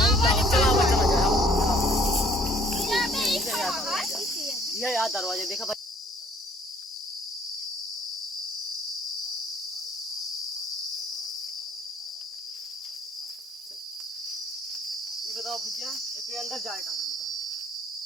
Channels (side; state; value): both; normal; correlation 0.59